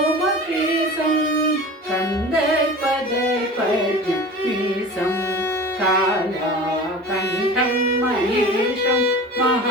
कन्दर्पदर्पण्यमीशं कालाकण्ठं महेशं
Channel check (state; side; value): normal; both; correlation 0.36